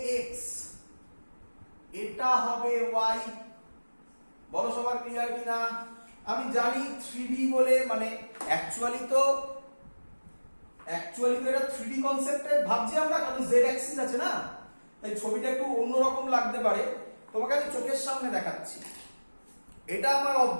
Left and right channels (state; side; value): inverted; both; correlation -1.00